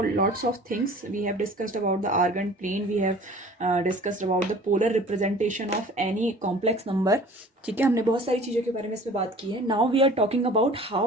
lots of things. We have discussed about the argand plane. We have discussed about the polar representation of any complex number. ठीक है, हमने बहुत सारी चीज़ों के बारे में इसमें बात की है. Now we are talking about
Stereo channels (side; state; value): both; normal; correlation 0.46